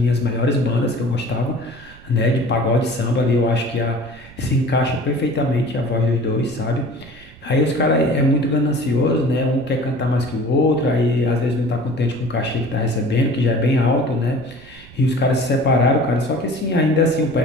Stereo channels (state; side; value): noise; right; rumble, 22 dB below the sound